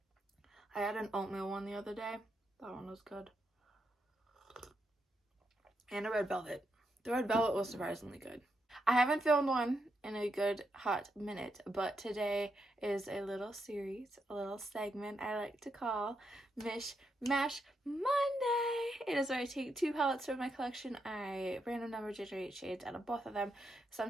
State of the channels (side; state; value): both; normal; correlation 0.81